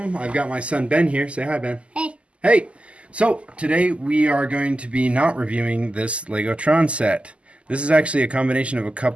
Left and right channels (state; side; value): late; left; 0.057 ms